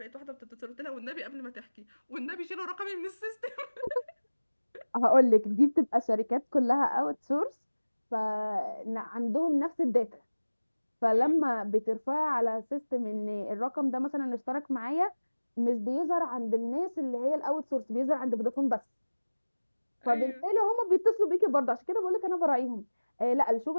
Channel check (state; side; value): inverted; both; correlation -1.00